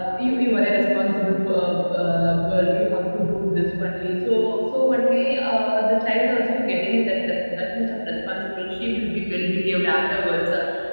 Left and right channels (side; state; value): both; inverted; correlation -1.00